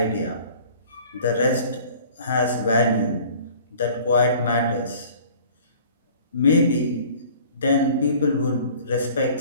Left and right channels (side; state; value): both; inverted; correlation -0.49